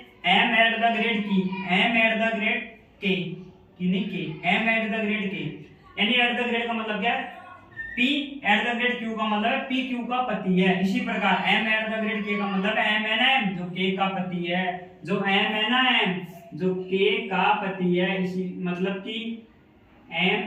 M eight the grade K, M eight the grade K, यानी एट द ग्रेड का मतलब क्या है, P eight the grade Q का मतलब है PQ का पति है। इसी प्रकार M eight the grade K का मतलब है M है ना M, जो K का पति है, जो M है ना M, जो K का पति है। इसी मतलब कि M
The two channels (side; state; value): both; identical; correlation 1.00